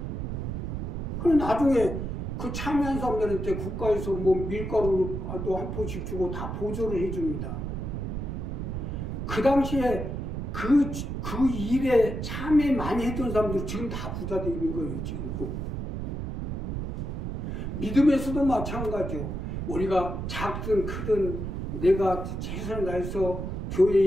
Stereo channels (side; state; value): right; noise; rumble, 4 dB below the sound